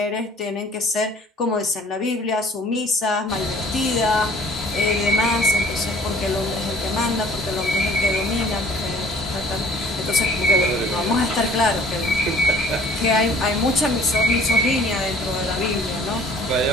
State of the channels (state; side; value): normal; both; correlation 0.53